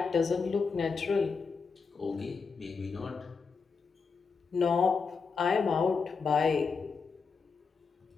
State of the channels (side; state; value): right; quieter; 5.1 dB